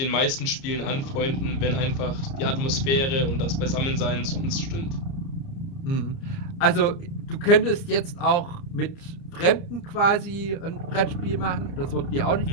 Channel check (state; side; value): late; right; 30 ms